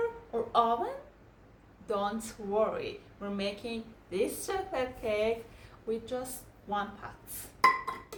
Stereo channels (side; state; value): both; identical; correlation 1.00